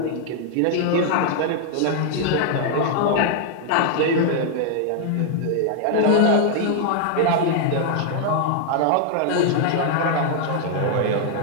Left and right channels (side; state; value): both; different; correlation 0.00